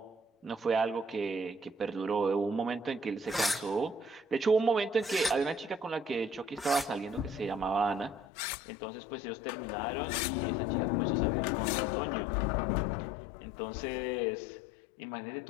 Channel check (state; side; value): drops out; right; at 8.2 s